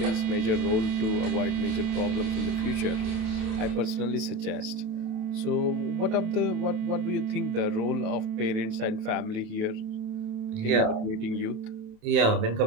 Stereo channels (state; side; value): late; left; 27 ms